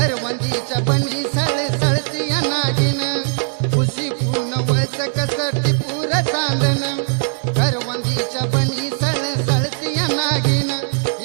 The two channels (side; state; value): left; silent; digital silence